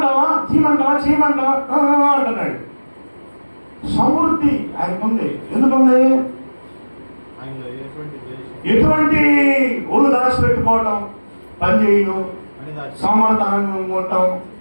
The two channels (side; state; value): both; inverted; correlation -1.00